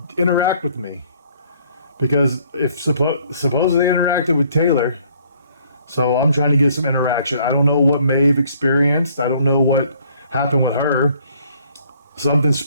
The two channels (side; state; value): both; inverted; correlation -0.62